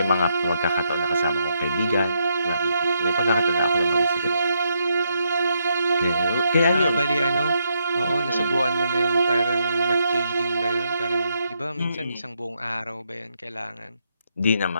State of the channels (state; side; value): inverted; both; correlation -0.78